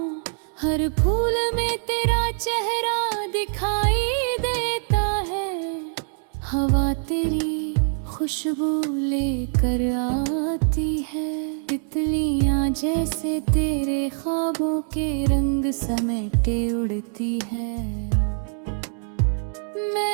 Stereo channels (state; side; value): silent; left; 63 dB below the other